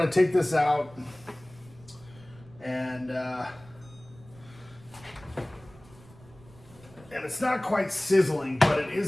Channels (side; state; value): right; noise; rumble, 23 dB below the sound